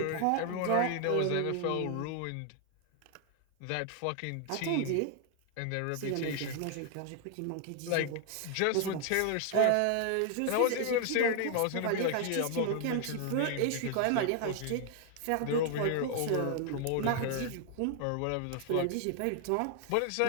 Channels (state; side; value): different; both; correlation 0.00